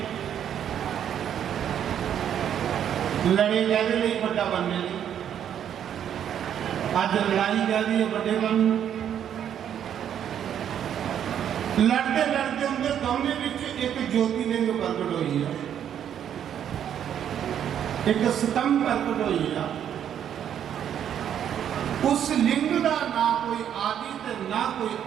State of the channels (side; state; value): left; quieter; 9.5 dB